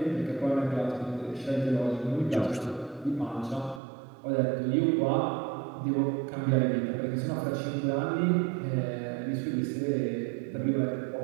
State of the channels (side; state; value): left; drops out; at 3.8 s